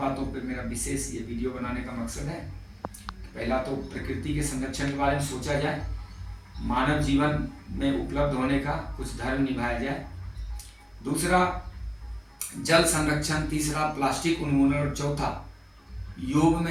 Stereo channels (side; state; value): both; identical; correlation 1.00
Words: पे मेरा विशेष ये वीडियो बनाने का मकसद है। पहला तो प्रकृति के संरक्षण के बारे में सोचा जाए, मानव जीवन में उपलब्ध होने का कुछ धर्म निभाया जाए। दूसरा जल संरक्षण, तीसरा प्लास्टिक उन्मूलन और चौथा योग